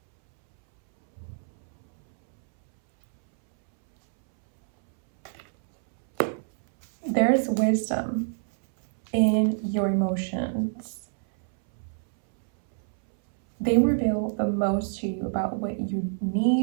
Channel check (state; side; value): silent; left; 61 dB below the other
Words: There's wisdom in your emotions. They reveal the most to you about what you